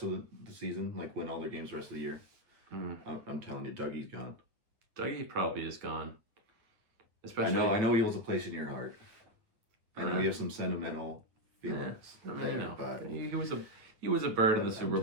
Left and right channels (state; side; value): late; left; 9.4 ms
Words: of the season, like win all their games the rest of the year. I'm telling you, Dougie's gone. Dougie probably is gone. Especially, I know he holds a place in your heart. I know you have some sentimental feelings. Yeah, I mean, know. But he was a bird in the Super